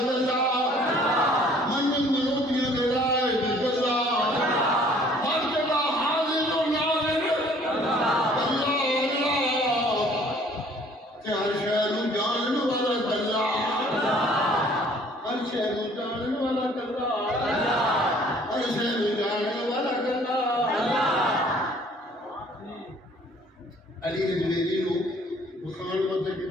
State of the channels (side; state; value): both; normal; correlation 0.56